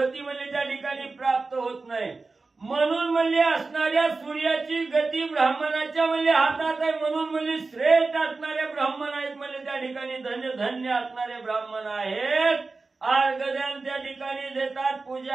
म्हणजे त्या ठिकाणी प्राप्त होत नाही. म्हणून म्हणजे असणाऱ्या सूर्याची गती ब्राह्मणाच्या म्हणजे हातात आहे. म्हणून म्हणजे श्रेष्ठ असणारे ब्राह्मण आहेत म्हणजे त्या ठिकाणी धन्य धन्य असणारे ब्राह्मण आहेत. अर्घदान त्या ठिकाणी देतात.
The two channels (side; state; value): left; quieter; 3.8 dB